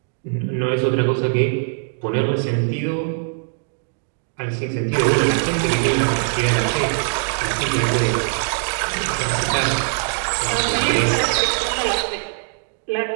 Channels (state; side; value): silent; left; digital silence